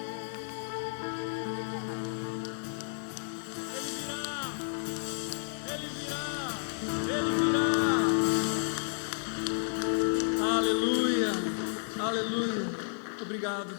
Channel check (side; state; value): right; silent; digital silence